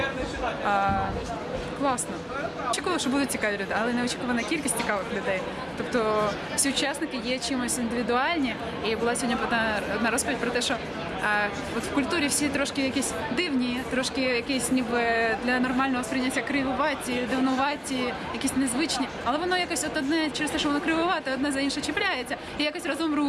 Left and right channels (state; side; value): identical; both; correlation 1.00